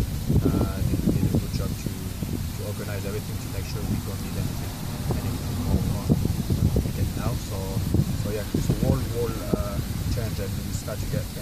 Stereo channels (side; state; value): both; identical; correlation 1.00